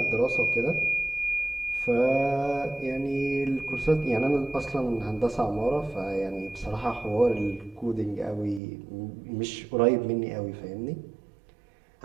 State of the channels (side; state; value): left; drops out; at 8.6 s